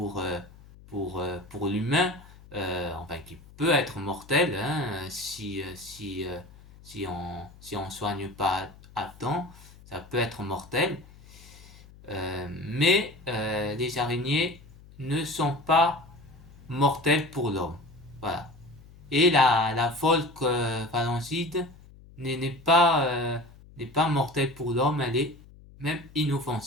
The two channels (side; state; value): left; noise; hum, 22 dB below the sound